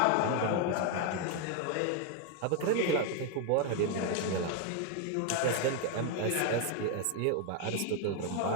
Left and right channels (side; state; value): both; different; correlation 0.01